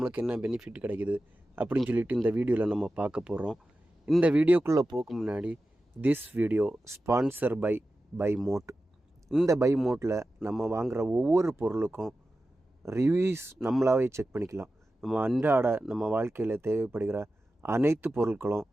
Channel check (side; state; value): both; normal; correlation 0.93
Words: என்ன பெனிஃபிட் கிடைக்குது அப்படின்னு சொல்லிட்டு இந்த வீடியோவில் நம்ம பார்க்க போகிறோம். இந்த வீடியோக்குள்ளே போக முன்னாடி, this video sponsor by Mode. இந்த பை மோட்டில் நம்ம வாங்குகிற ஒவ்வொரு பொருளுக்கும் ரிவ்யூஸ் நம்மளாவே செக் பண்ணிக்கலாம். நம்ம வாழ்க்கையில் தேவைப்படுகிற அனைத்து பொருட்களும்